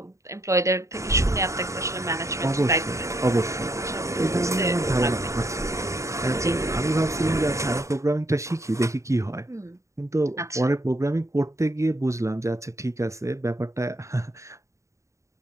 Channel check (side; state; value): left; late; 0.15 ms